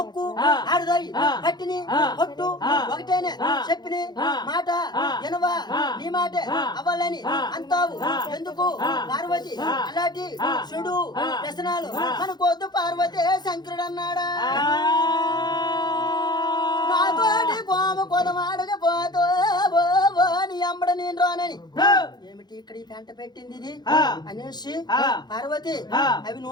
ఒక్కు ఆడదాయి పట్టిని ఒట్టు ఒకటేనే చెప్పిని మాట ఎనవా నీ మాట అవ్వాలని అంటావు ఎందుకు పార్వతి? అలాంటి చెడు వ్యసనాలు మనకొద్దు పార్వతి. శంకరుడు అన్నాడా నాతోటి కోమ కొదమాడకపోతో నీ అమ్మడ నేను రానని. ఏమిటి ఇక్కడ ఈ పెంట పెట్టింది ఇది అనేసి పార్వతి అవి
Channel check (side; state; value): right; late; 0.20 ms